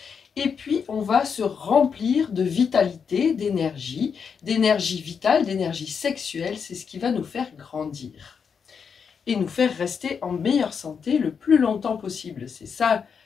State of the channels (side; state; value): right; quieter; 6.4 dB